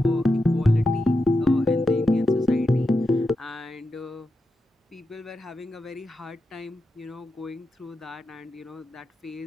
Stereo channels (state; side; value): normal; both; correlation 0.88